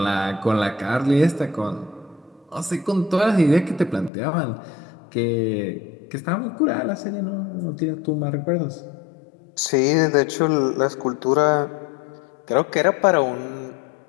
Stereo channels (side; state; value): right; drops out; at 4.1 s